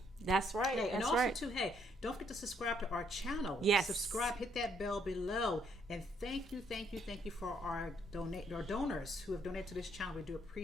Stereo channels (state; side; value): normal; both; correlation 0.70